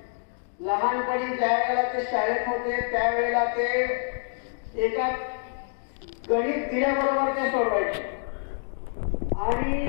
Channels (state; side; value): silent; right; 60 dB below the other